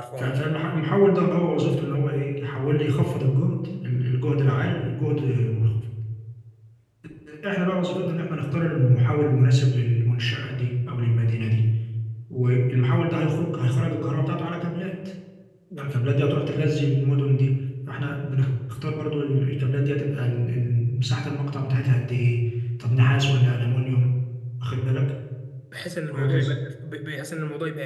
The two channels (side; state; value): both; identical; correlation 1.00